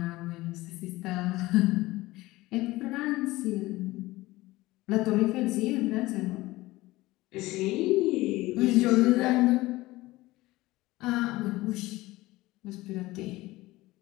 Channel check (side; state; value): right; quieter; 19.0 dB